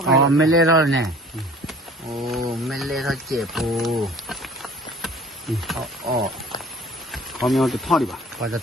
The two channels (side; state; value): both; normal; correlation 0.48